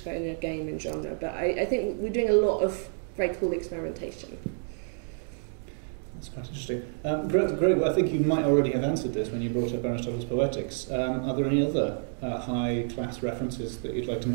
kind of game and genre. But I think we're doing a lot of very cool experimentation. That's quite interesting. Greg, I think you might already have answered this when you brought up Aristotle's Poetics. Are there any other high-class references that you'd like to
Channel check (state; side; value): silent; left; digital silence